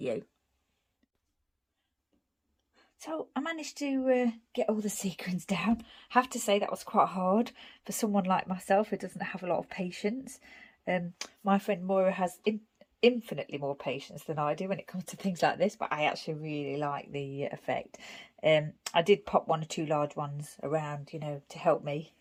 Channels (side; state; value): both; identical; correlation 1.00